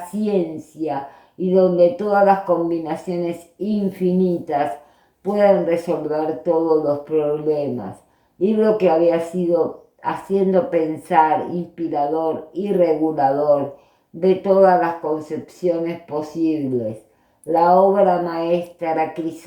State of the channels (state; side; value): identical; both; correlation 1.00